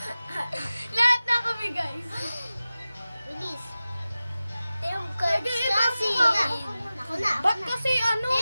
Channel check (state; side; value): inverted; both; correlation -0.95